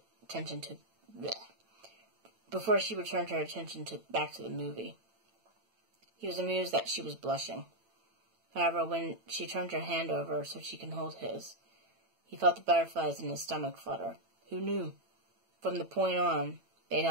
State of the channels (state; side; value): late; left; 9.0 ms